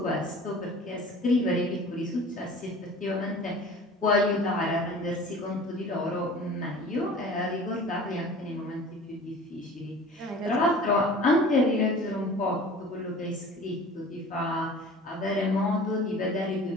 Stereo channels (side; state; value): both; normal; correlation 0.43